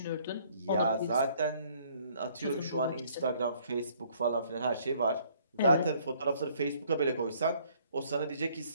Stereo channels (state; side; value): inverted; both; correlation -0.62